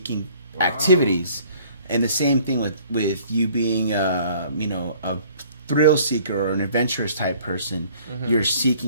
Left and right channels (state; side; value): inverted; both; correlation -0.55